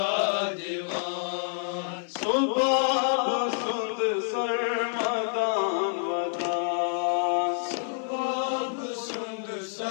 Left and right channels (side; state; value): right; silent; 56 dB below the other